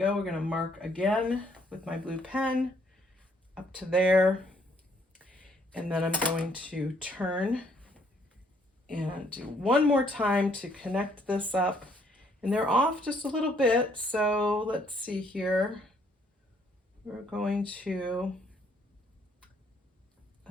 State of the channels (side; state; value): both; normal; correlation 0.66